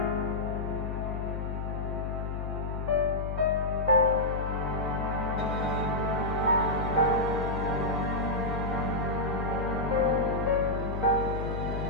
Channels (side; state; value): left; noise; hum, 3 dB below the sound